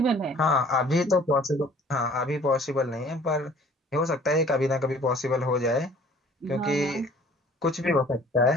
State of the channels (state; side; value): normal; both; correlation 0.53